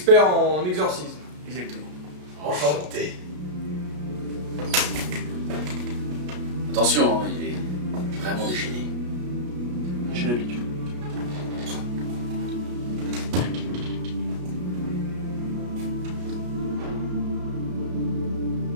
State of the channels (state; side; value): late; left; 33 ms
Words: en exorcisme. Exactement. Enchanté. Attention, hein, il est vraiment déchaîné. J'ai l'habitude.